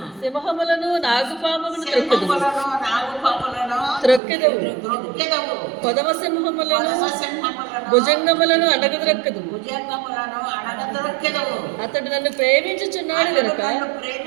సింహములను నాగుపాములను త్రొక్కెదవు, కొదమ సింహములను భుజంగములను అడగద్రొక్కదు. అతడు నన్ను ప్రేమించుచున్నాడు గనుక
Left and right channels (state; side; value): drops out; left; at 4.2 s